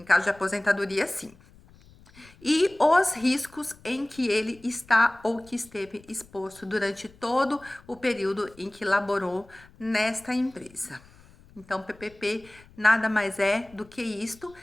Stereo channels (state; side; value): noise; left; rumble, 25 dB below the sound